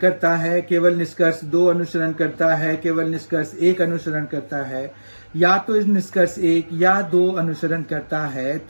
है, केवल निष्कर्ष दो अनुसरण करता है, केवल निष्कर्ष एक अनुसरण करता है, या तो इस निष्कर्ष एक या दो अनुसरण करता है,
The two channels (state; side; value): inverted; both; correlation -1.00